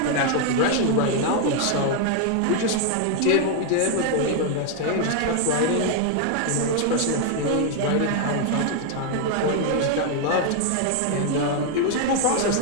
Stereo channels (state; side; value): different; both; correlation 0.01